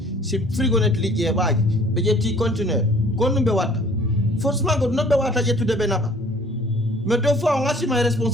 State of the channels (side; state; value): both; normal; correlation 0.53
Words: C'est frigonnette li y va. Mais il y a petit conteneur. Qu'on ne wata. Forcément, qu'on ne peut wata tout de benaba. Mais deux fois, on a si ma